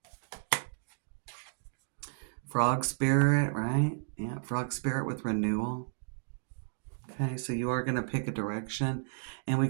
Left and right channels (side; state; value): left; silent; digital silence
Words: Frog Spirit, right? Yeah, Frog Spirit with renewal. Okay, so you are going to pick a direction. And we